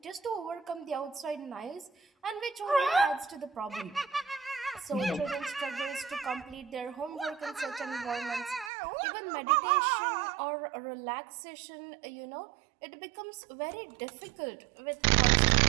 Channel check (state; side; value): drops out; left; at 8.7 s